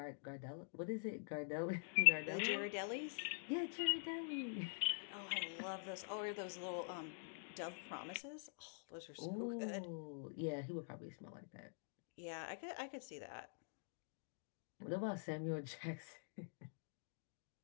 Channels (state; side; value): silent; right; digital silence